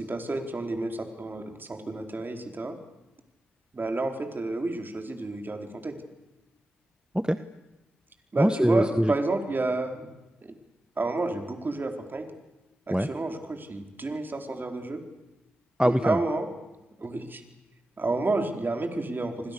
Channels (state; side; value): normal; both; correlation 0.93